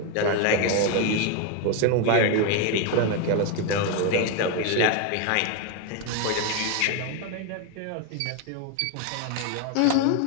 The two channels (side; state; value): both; different; correlation 0.01